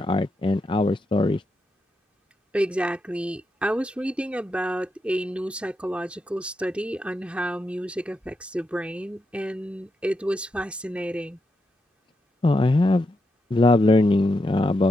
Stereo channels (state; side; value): normal; both; correlation 0.84